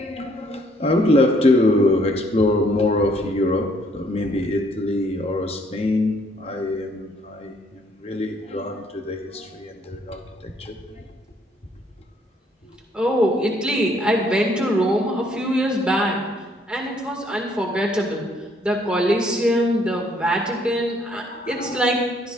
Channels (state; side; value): normal; both; correlation 0.66